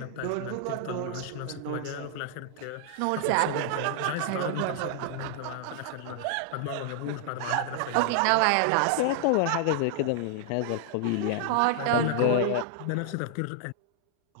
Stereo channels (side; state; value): both; different; correlation -0.01